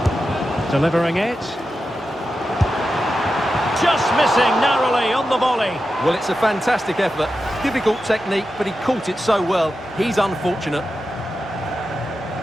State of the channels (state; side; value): normal; both; correlation 0.90